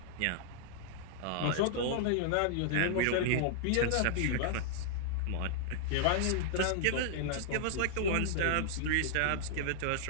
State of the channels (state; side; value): different; both; correlation -0.01